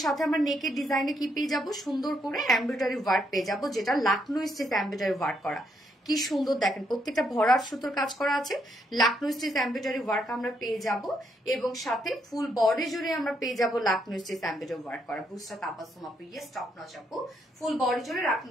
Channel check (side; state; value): both; normal; correlation 0.75